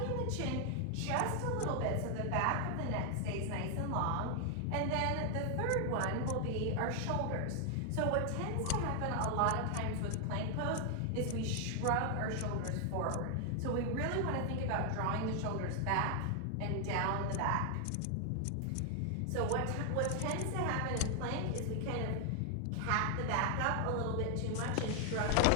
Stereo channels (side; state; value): both; different; correlation 0.00